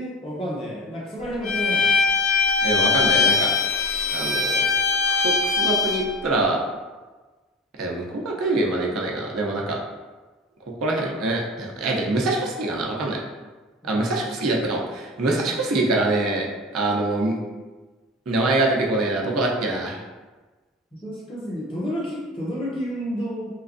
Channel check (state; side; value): normal; both; correlation 0.32